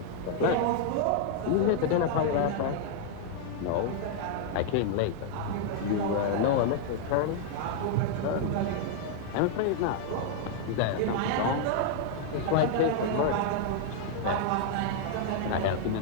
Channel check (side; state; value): both; different; correlation 0.00